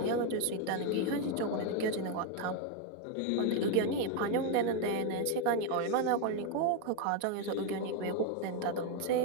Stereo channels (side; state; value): both; different; correlation 0.02